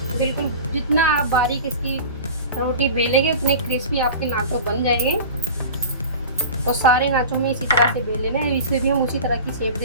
बिल्कुल जितना आप बारीक इसकी रोटी बेलेंगे उतने क्रिस्पी आपके नाचो बन जाएंगे। तो सारे नाचो में इसी तरह से बेल लेना है, इसे भी हम उसी तरह की शेप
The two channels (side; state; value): both; inverted; correlation -0.35